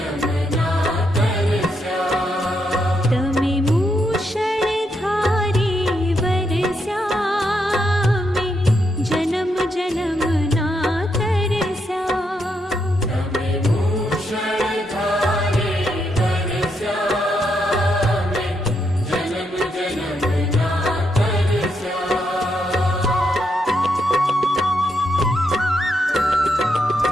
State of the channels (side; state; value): both; normal; correlation 0.80